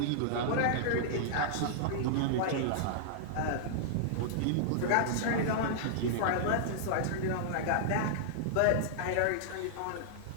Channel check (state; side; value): different; both; correlation -0.01